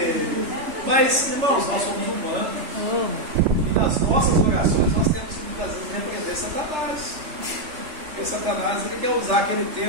Mas, irmãos, nós somos humanos. E nas nossas orações nós temos que muitas vezes repreender Satanás. Porque Satanás ele quer usar aquele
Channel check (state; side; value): late; left; 3.3 ms